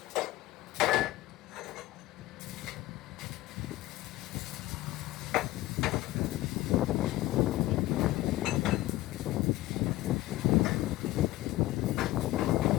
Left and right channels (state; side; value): quieter; right; 16.9 dB